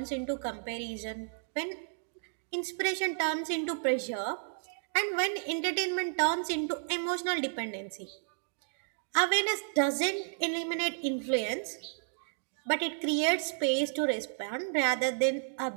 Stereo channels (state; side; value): silent; left; digital silence